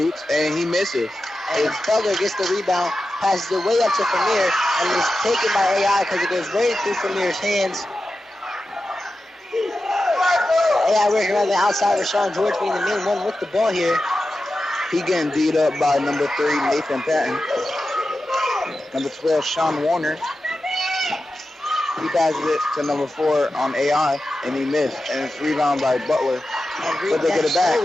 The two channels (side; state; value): both; normal; correlation 0.92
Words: and he misses. And Butler gets the rebound, passes it way up to Famir, and is taken by AI because it goes right through Famir's hands. AI working around the outside with Rashawn George being the main one with the ball here. He getting beat up by number 3, Nathan Patton. Number 12, Sean Warner. He passes it to number 4 on AI, and he missed. And it's rebound by Butler. But they get it back.